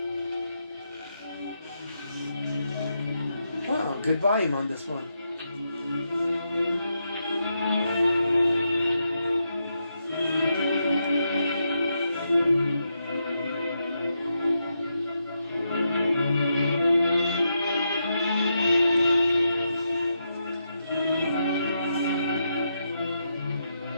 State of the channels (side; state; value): both; inverted; correlation -0.83